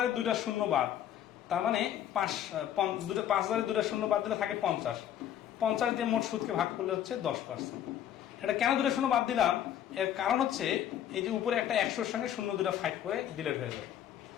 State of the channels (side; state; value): right; quieter; 10.7 dB